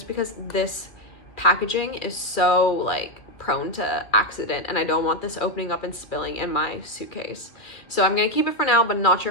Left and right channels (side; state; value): right; late; 2.3 ms